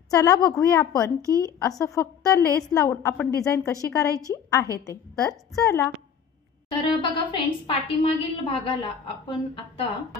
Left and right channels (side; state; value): right; quieter; 7.6 dB